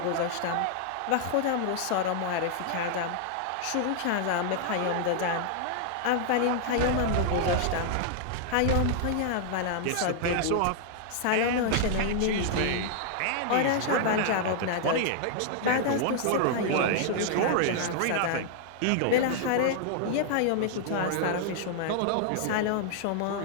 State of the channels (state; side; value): different; both; correlation -0.01